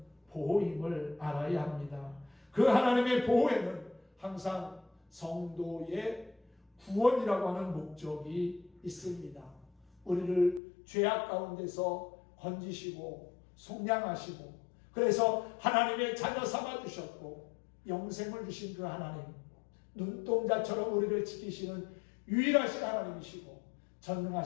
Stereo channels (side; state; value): right; drops out; at 10.6 s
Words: 보호임을 알아야 합니다. 그 하나님의 보호에는 항상 성도의 구원이라고 하는 목적이 있습니다. 우리를 죄악 가운데서 건지시고 속량하시고 그래서 하나님의 자녀 삼아주셨고 영생을 주신 그 하나님, 눈동자처럼 우리를 지키시는 유일하신 하나님이시고